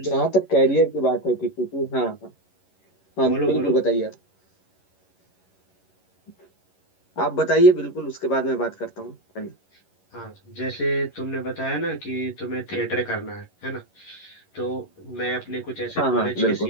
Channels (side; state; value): right; late; 11 ms